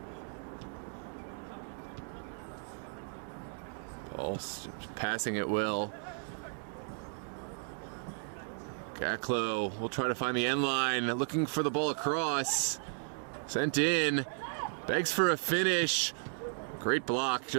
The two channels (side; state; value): left; silent; 55 dB below the other